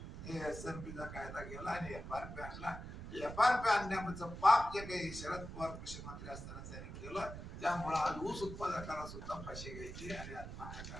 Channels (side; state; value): right; noise; rumble, 9 dB below the sound